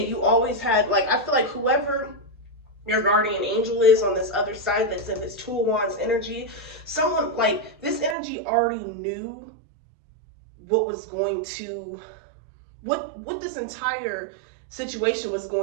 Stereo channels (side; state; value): left; drops out; at 8.2 s